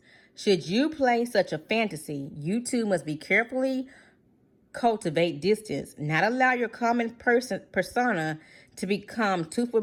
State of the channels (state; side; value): identical; both; correlation 1.00